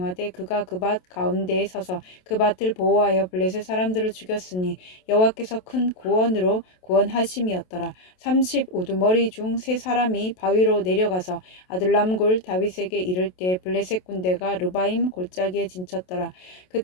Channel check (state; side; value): late; right; 27 ms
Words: 그가 그 밭 가운데에 서서 그 밭을 보호하여 블레셋 사람들을 죽였으니 여호와께서 큰 구원으로 구원하심이었더라. 30 우두머리 중 세 사람이 바위로 내려가서 아둘람골 다윗에게 이를 때 블레셋 군대가 르바임 골짜기에 진쳤더라.